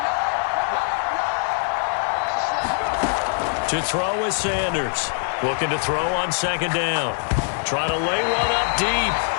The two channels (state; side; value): silent; right; digital silence